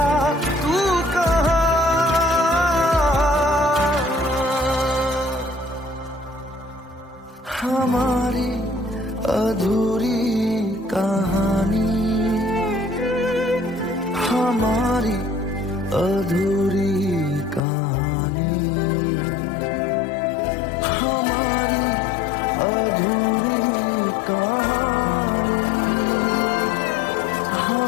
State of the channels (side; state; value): right; drops out; at 17.6 s